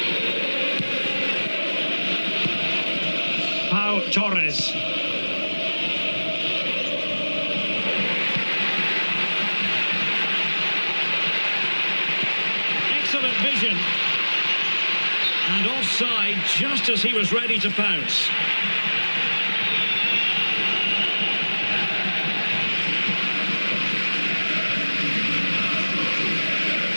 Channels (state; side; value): inverted; both; correlation -1.00